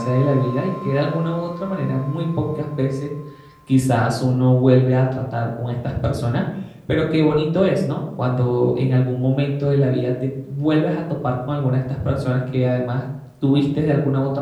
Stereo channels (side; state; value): both; identical; correlation 1.00